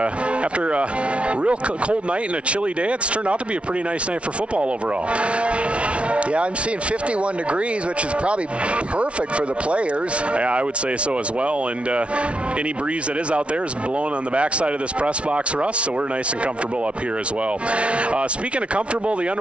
a real cold night and a chilly day, it's turned out to be a pretty nice night for football overall. Yeah, I'm seeing 51 degrees, which is probably perfect for the players. Yeah, I would say so as well. And any breeze that is out there is blowing on the backside of this press box for us, so we're nice and comfortable up here as well. Speaking of comfortable, the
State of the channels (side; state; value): left; late; 0.061 ms